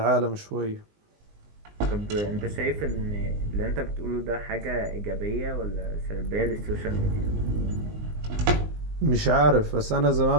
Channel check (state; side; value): late; left; 19 ms